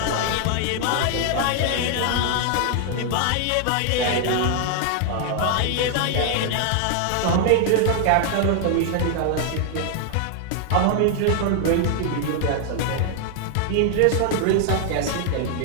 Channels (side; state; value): both; different; correlation 0.00